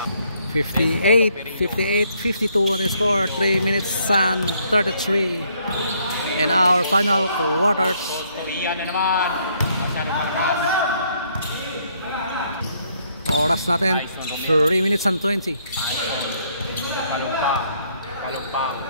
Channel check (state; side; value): inverted; both; correlation -0.69